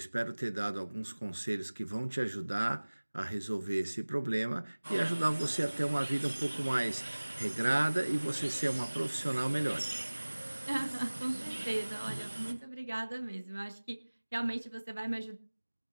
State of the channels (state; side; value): inverted; both; correlation -1.00